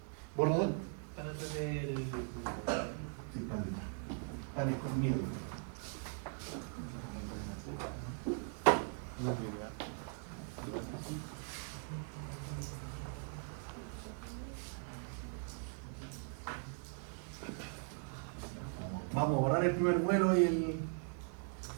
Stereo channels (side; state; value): left; silent; 51 dB below the other